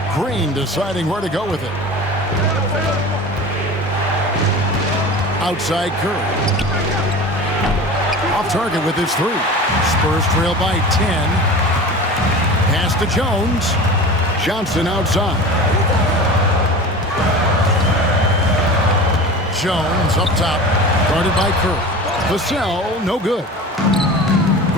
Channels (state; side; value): normal; both; correlation 0.35